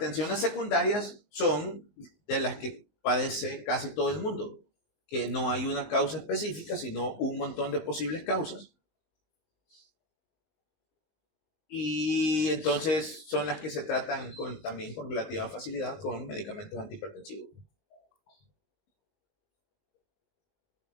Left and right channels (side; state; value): right; late; 19 ms